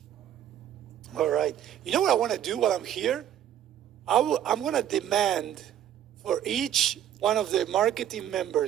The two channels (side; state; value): left; quieter; 10.9 dB